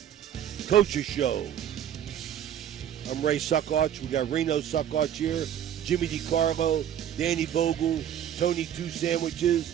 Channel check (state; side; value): quieter; left; 10.1 dB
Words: Coaches Show. I'm Ray Suckarch. We got Reno Suckarch here, Jimmy DiCarlo, Danny Vogel, Tony Two